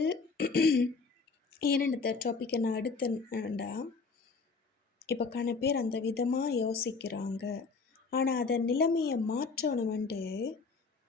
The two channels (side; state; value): right; quieter; 4.5 dB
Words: ஏன்னு டாப்பிக்கை நான் எடுத்தேன்டா, இப்போ பேர் அந்த விதமாக யோசிக்கிறாங்க. ஆனால் அதை நிலைமையை மாற்றணுமெண்டு